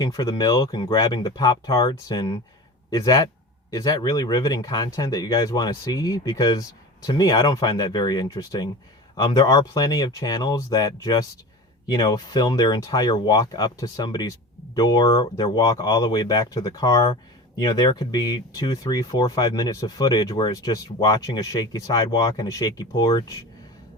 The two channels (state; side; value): normal; both; correlation 0.33